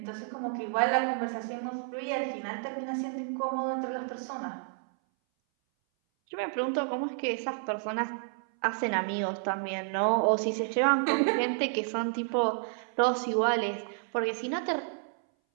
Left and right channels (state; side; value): silent; left; 57 dB below the other